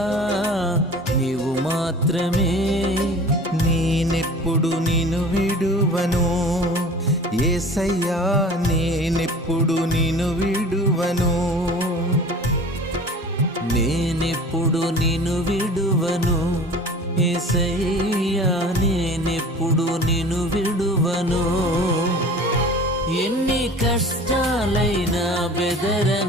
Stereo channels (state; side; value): normal; both; correlation 0.42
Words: నీవు మాత్రమే. నేనెప్పుడు నిన్ను విడువను యేసయ్యా, నేనెప్పుడు నిన్ను విడువను. నేనెప్పుడు నిన్ను విడువను యేసయ్యా, నేనెప్పుడు నిన్ను విడువను. ఎన్ని కష్టాలైనా